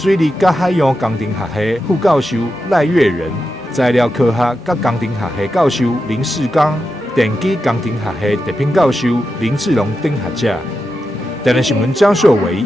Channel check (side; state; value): both; normal; correlation 0.89